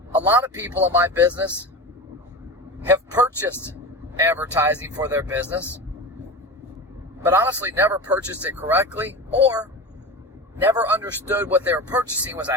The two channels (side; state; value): both; normal; correlation 0.27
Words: A lot of people in my business have purchased advertising for their business, but honestly never purchased it correctly or never understood what they were purchasing was